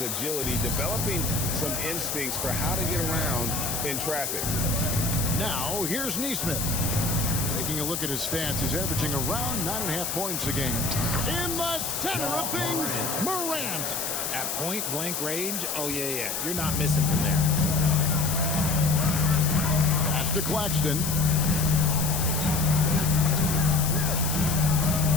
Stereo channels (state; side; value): noise; left; hiss, 2 dB below the sound